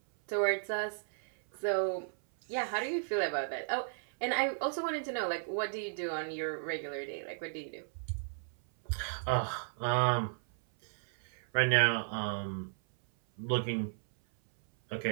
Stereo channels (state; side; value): silent; left; 55 dB below the other